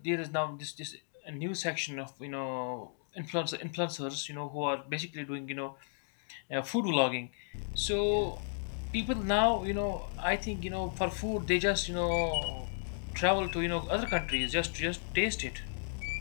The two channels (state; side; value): silent; right; digital silence